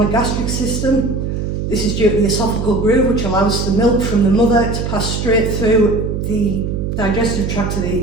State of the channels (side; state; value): right; noise; hum, 3 dB below the sound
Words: system. This is due to the esophageal groove, which allows the milk from the mother to pass straight through the digestive tract to